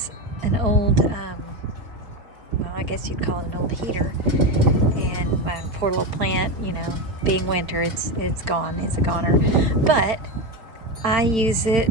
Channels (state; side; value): late; left; 4.5 ms